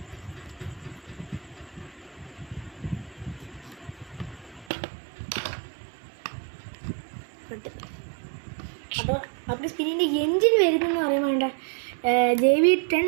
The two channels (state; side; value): drops out; left; at 4.7 s